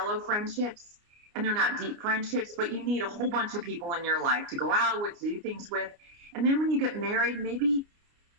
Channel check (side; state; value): left; late; 29 ms